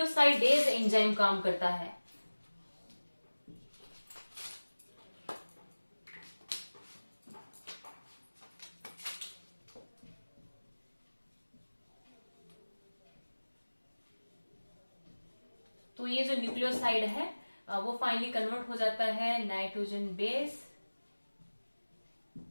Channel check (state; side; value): inverted; both; correlation -1.00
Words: एंजाइम काम करता है तो ये जो न्यूक्लियोसाइड है वो फाइनली कन्वर्ट हो जाता है nitrogen base